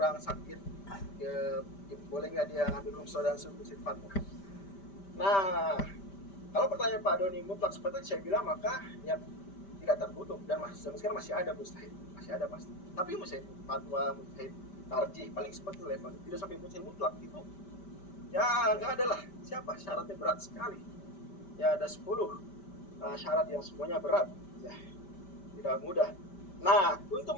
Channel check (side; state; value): right; late; 5.1 ms